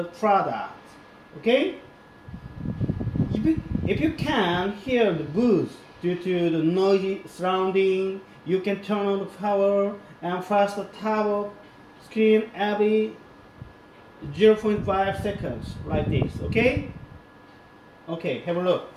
product. Okay? If you can't hear the booth due to the noisy surrounding, you can turn on the power and flash the top of screen every 0.5 seconds like this. Okay? Okay, have a look.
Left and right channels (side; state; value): both; identical; correlation 1.00